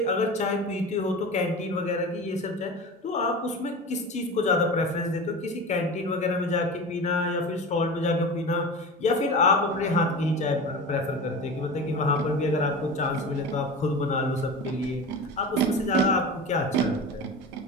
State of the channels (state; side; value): normal; both; correlation 0.30